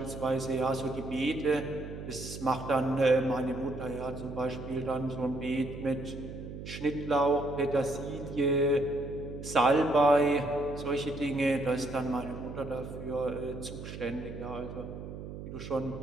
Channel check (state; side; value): noise; right; hum, 10 dB below the sound